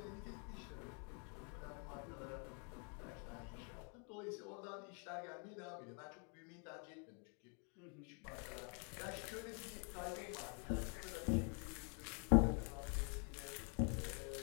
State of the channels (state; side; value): quieter; right; 38.1 dB